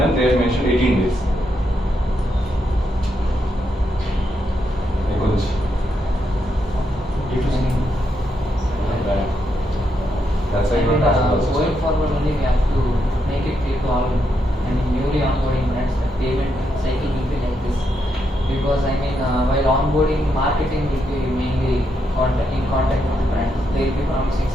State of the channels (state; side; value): normal; both; correlation 0.81